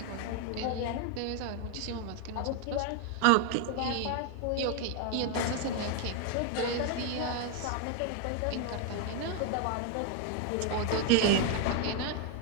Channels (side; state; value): both; different; correlation 0.01